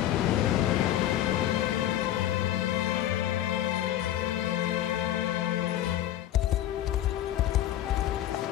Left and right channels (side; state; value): right; quieter; 12.4 dB